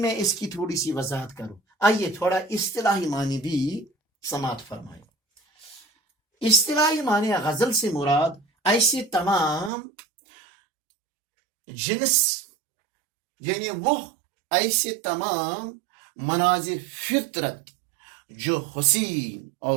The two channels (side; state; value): left; drops out; at 9.7 s